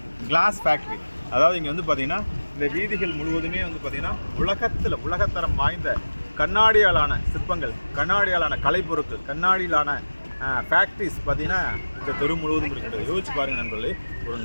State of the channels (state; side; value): inverted; both; correlation -1.00